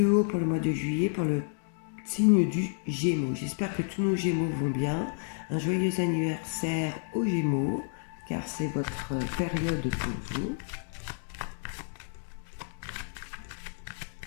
pour le mois de juillet pour le signe du Gémeaux. J'espère que tous nos Gémeaux vont bien. Un joyeux anniversaire aux Gémeaux, car c'est votre période pour vous.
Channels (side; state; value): right; silent; digital silence